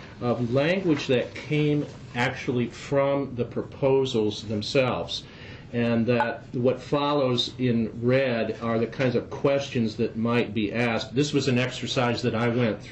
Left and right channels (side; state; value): both; identical; correlation 1.00